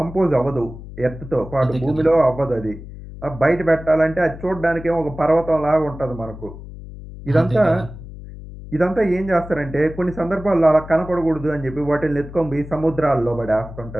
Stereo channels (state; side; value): noise; left; hum, 14 dB below the sound